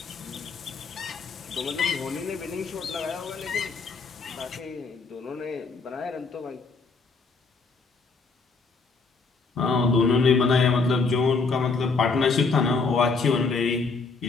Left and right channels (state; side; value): quieter; right; 4.3 dB